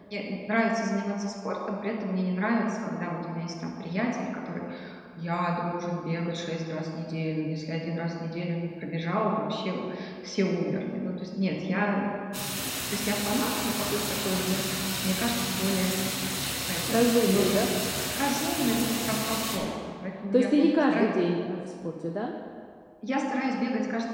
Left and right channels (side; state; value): both; identical; correlation 1.00